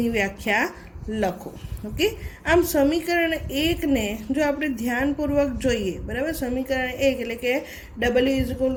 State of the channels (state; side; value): identical; both; correlation 1.00